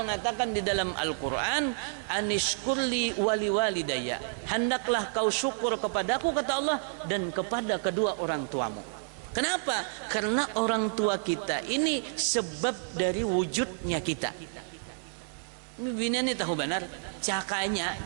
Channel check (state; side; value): silent; left; 58 dB below the other